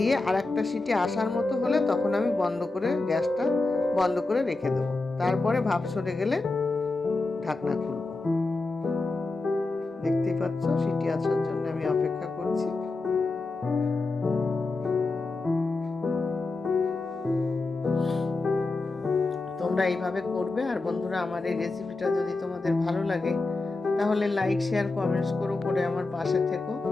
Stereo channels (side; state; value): right; quieter; 3.4 dB